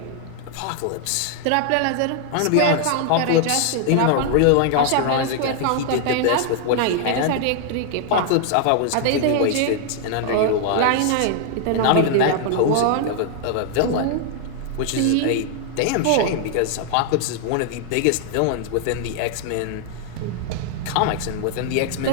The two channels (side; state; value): both; different; correlation 0.00